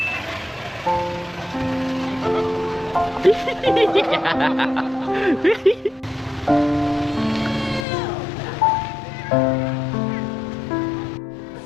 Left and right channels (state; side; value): drops out; right; at 7.9 s